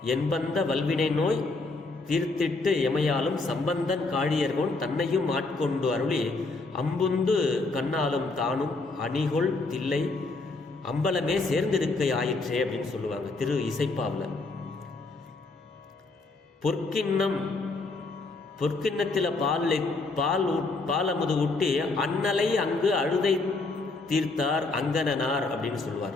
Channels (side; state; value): right; quieter; 3.5 dB